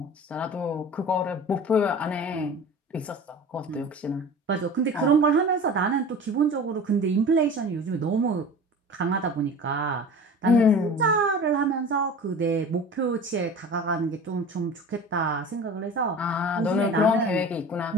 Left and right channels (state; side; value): normal; both; correlation 0.37